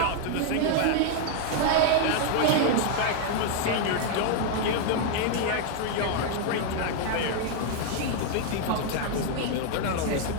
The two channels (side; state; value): both; different; correlation 0.00